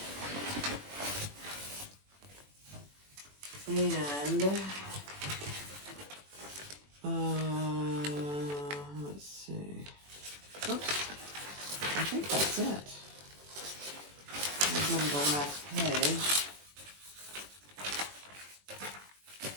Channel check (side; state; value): left; late; 21 ms